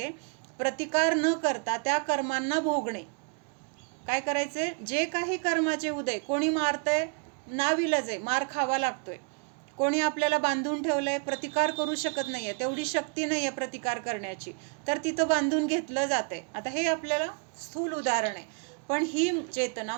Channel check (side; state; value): left; quieter; 37.4 dB